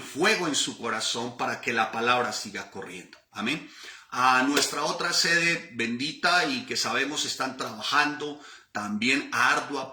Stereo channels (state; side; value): identical; both; correlation 1.00